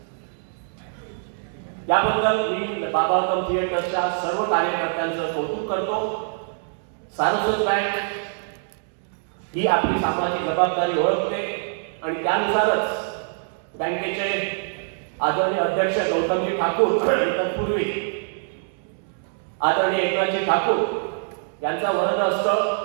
याबद्दल मी बाबावर्धन थिएटरच्या सर्व कार्यकर्त्यांचं कौतुक करतो. सारस्वत बँक ही आपली सामाजिक जबाबदारी ओळखते आणि त्यानुसारच बँकेचे आदरणीय अध्यक्ष गौतमजी ठाकूर आणि तत्पूर्वी आदरणीय एकनाथजी ठाकूर यांचा वरद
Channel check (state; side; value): silent; left; digital silence